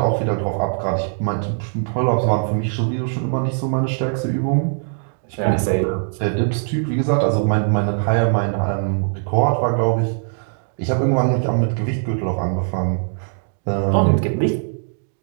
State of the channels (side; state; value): left; silent; digital silence